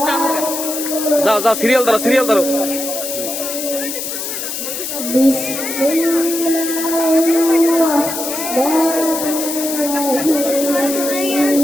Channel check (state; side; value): noise; left; hiss, 5 dB below the sound